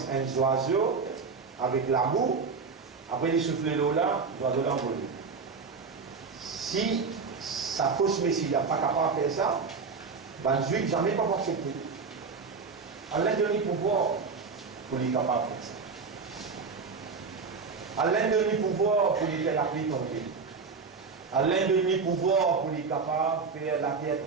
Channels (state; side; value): quieter; left; 4.9 dB